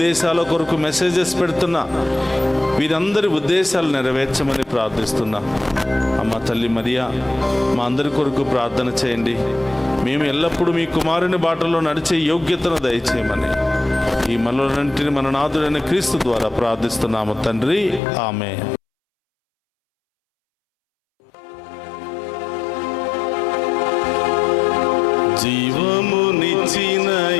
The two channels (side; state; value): right; drops out; at 18.0 s